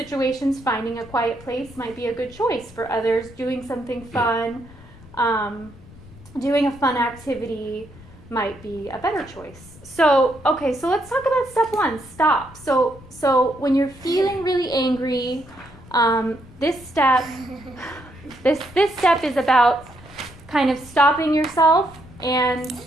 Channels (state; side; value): noise; left; rumble, 21 dB below the sound